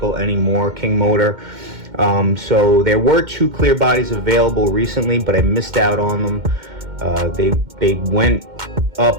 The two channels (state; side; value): late; left; 2.1 ms